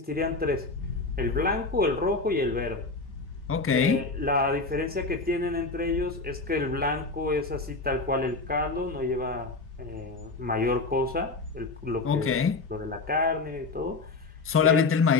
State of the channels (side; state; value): right; quieter; 3.7 dB